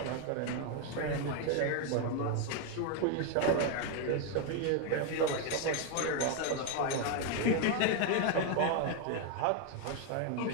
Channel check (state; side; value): different; both; correlation 0.01